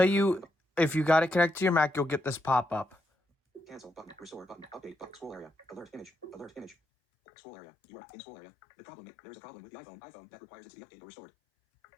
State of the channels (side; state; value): right; drops out; at 6.8 s